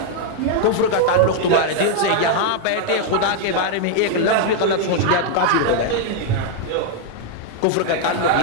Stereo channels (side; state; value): both; different; correlation 0.00